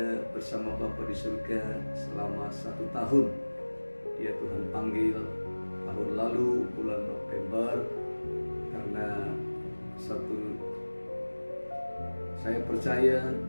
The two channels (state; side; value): inverted; both; correlation -1.00